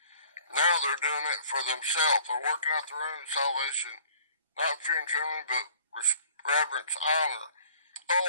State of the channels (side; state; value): both; inverted; correlation -0.53